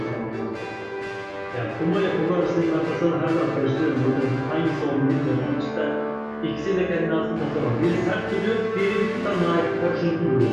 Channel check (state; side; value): identical; both; correlation 1.00